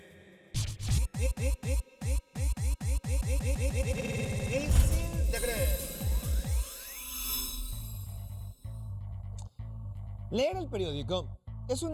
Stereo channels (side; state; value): both; identical; correlation 1.00